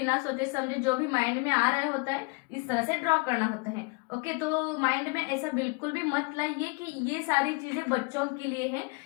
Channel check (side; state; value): right; quieter; 30.3 dB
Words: सोचे समझे जो भी माइंड में आ रहा होता है इस तरह से ड्रॉ करना होता है। ओके, तो माइंड में ऐसा बिल्कुल भी मत लाइए कि ये सारी चीजें बच्चों के लिए हैं,